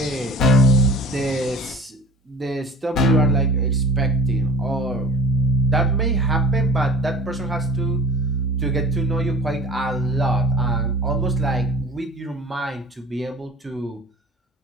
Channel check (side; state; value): both; normal; correlation 0.44